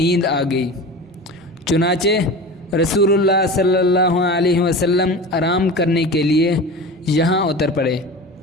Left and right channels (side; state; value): both; normal; correlation 0.32